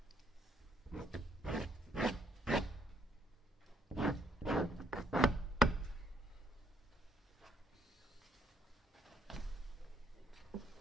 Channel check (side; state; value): both; normal; correlation 0.71